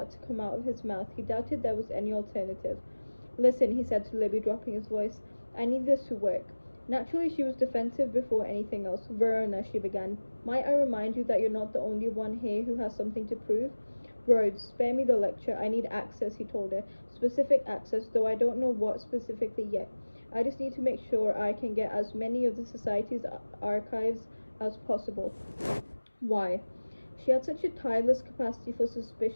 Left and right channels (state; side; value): inverted; both; correlation -1.00